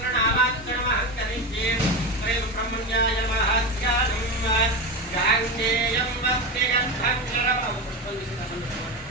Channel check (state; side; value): normal; both; correlation 0.19